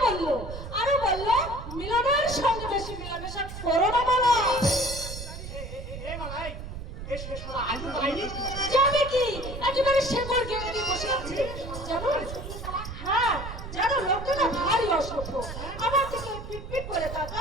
বললো মিলনের সঙ্গে বেশি মিলামেশা করো না বলো। এ মালাই এসে শালা আজও পাইনি। যাবে কি একেবারে শেকড় গেড়ে দিয়ে বসে আছে জানো? হ্যাঁ জানো লোকটা না ভারী অসভ্য। আমার থেকে পিটপিট করে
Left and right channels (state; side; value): noise; right; rumble, 9 dB below the sound